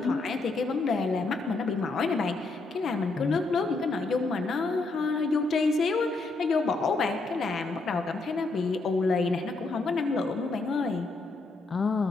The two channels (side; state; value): right; quieter; 3.4 dB